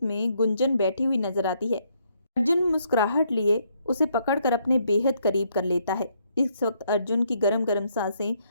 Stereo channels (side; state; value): both; inverted; correlation -0.72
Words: में गुंजन बैठी हुई नजर आती है। अर्जुन मुस्कुराहट लिए उसे पकड़कर अपने बेहद करीब कर लेता है। इस वक्त अर्जुन की गरम गरम सांसें